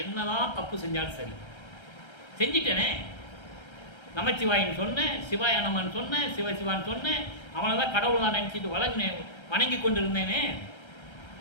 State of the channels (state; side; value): late; right; 1.3 ms